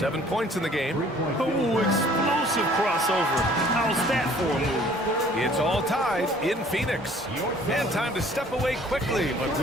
points in the game. Oh, explosive crossover. How's that for a move? It's all tied in Phoenix. And time to step away quickly, but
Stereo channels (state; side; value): normal; both; correlation 0.55